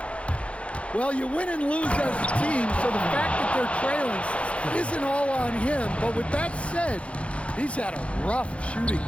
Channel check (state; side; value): late; right; 0.061 ms